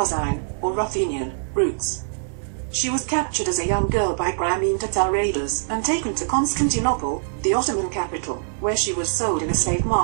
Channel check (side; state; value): left; silent; digital silence